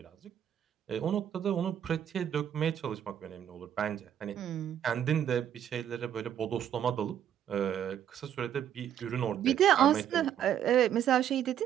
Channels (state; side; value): quieter; left; 10.0 dB